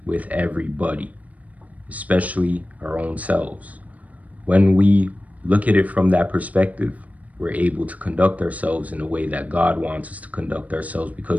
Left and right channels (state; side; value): late; left; 0.071 ms